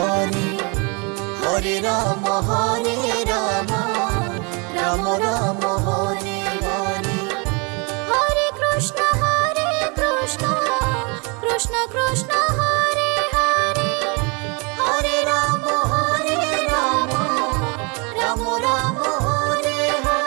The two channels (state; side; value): quieter; left; 31.6 dB